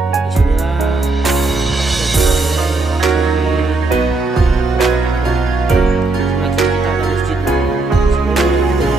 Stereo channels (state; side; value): quieter; left; 3.2 dB